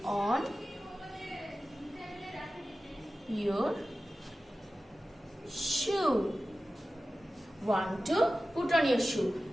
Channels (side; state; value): both; normal; correlation 0.95